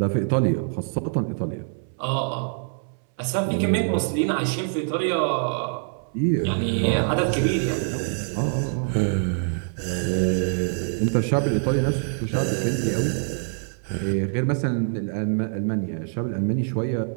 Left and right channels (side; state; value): left; silent; 60 dB below the other